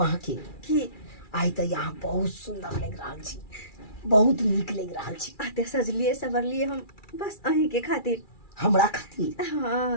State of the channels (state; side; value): late; right; 2.3 ms